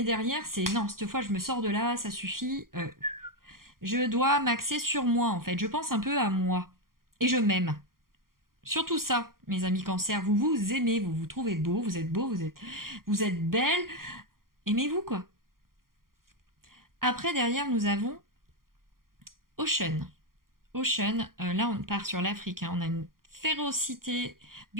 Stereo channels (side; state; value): left; late; 0.92 ms